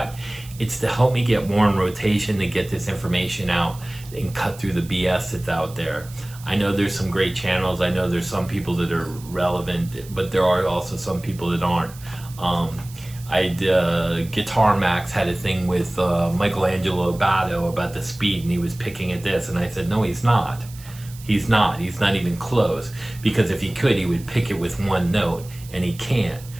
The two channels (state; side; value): noise; right; hiss, 20 dB below the sound